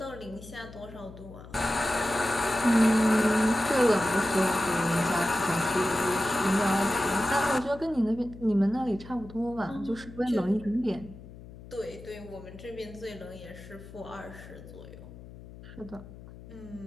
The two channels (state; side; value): noise; left; hum, 17 dB below the sound